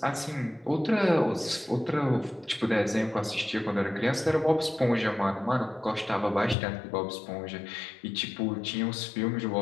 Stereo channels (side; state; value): right; drops out; at 6.6 s